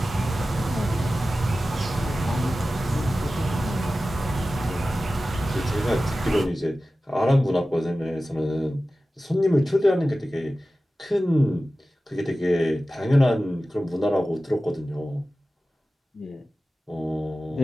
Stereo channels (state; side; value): normal; both; correlation 0.95